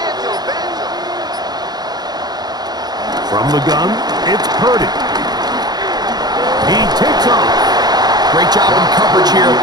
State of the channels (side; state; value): left; late; 0.20 ms